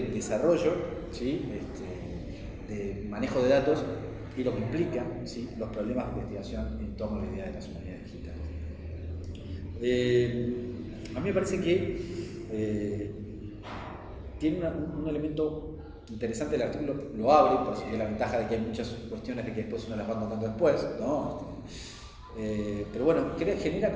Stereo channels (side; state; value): both; identical; correlation 1.00